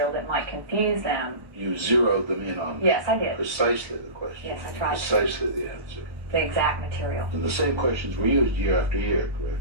that might confuse them. You zeroed them in on Yes, I did. precisely the question. Yes, I tried to. Precisely the answer. The exact material. And the same questions were used year after year,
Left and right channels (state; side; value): late; left; 1.1 ms